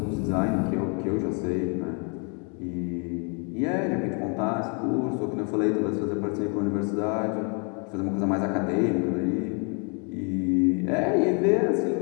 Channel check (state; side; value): quieter; right; 37.6 dB